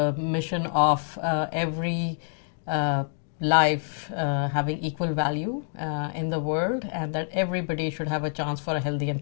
mission of every life having equal value in the world, and that everybody should have a chance for a healthy and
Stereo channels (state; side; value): silent; right; digital silence